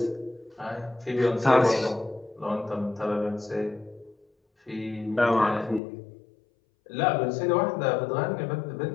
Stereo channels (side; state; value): right; drops out; at 5.8 s